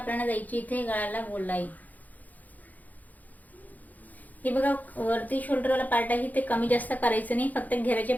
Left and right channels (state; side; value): late; right; 0.080 ms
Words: द्यायची इथे गळ्याला गोलाई. हे बघा वरती शोल्डरवाला पार्ट आहे ते कमी जास्त करायचं नाही, फक्त घेराच्या